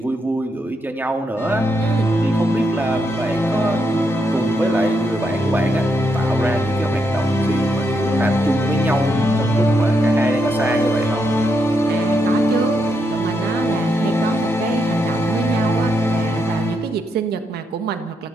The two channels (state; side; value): normal; both; correlation 0.80